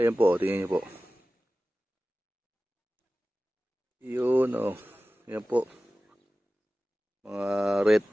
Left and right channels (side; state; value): both; normal; correlation 0.96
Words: po, tingnan niyo po. Yun oh. Ayan po. Mga